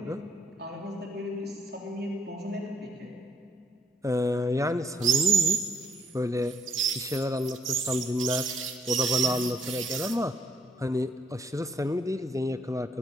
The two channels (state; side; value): normal; both; correlation 0.66